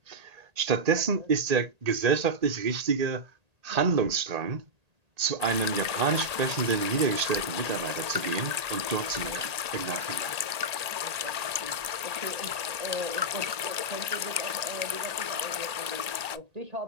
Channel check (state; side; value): late; left; 1.8 ms